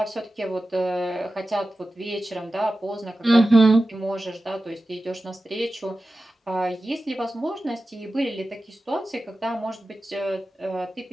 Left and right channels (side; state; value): both; normal; correlation 0.94